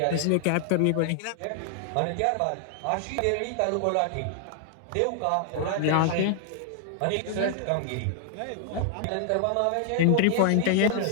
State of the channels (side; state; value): both; different; correlation 0.00